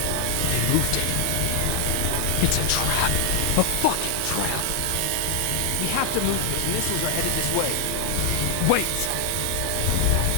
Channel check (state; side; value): different; both; correlation 0.00